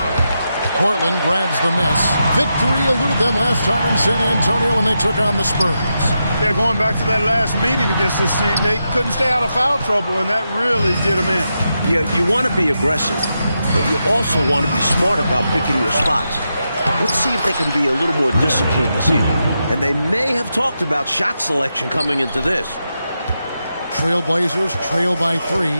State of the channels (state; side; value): inverted; both; correlation -0.86